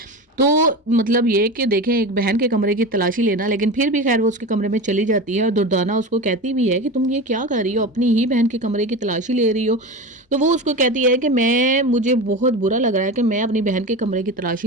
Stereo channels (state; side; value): normal; both; correlation 0.26